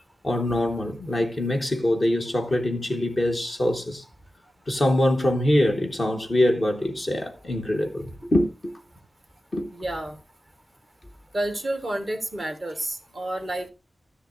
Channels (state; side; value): normal; both; correlation 0.92